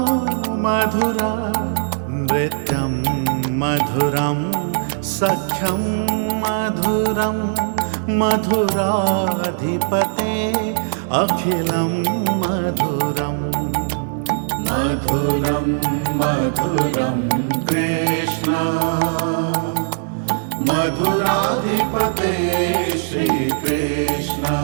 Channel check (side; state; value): left; silent; digital silence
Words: मधुरा नृत्यं मधुरं सख्यं मधुरं मधुराधिपते अखिलं मधुरम् मधुरं मधुरं कृष्ण मधुराधिपते श्रीकृष्ण